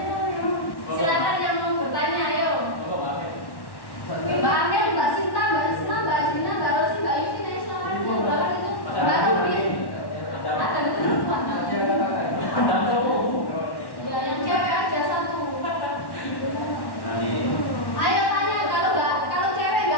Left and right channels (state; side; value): late; right; 1.1 ms